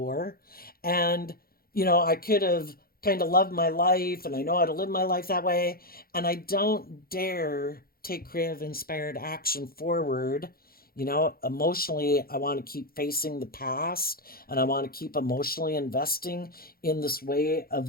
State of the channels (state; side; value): late; right; 0.43 ms